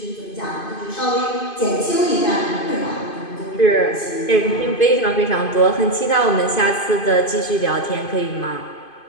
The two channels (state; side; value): late; right; 2.5 ms